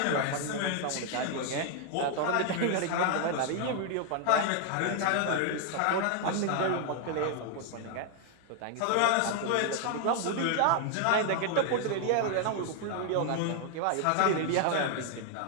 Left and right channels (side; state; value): both; different; correlation 0.00